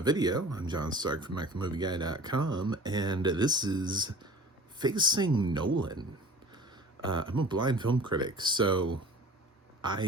video. I'm John Stark from MacTheMovieGuy.com, and this is Facing Nolan. I'm a blind film critic, so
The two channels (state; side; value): normal; both; correlation 0.43